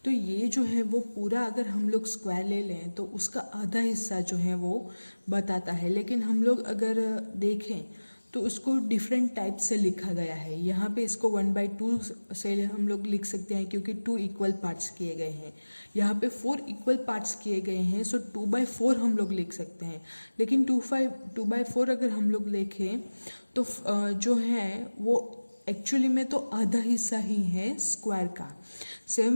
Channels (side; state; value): both; inverted; correlation -1.00